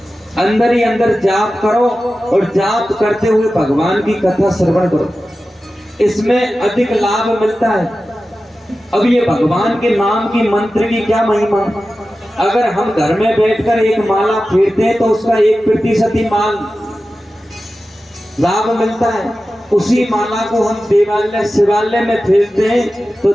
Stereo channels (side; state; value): both; normal; correlation 0.94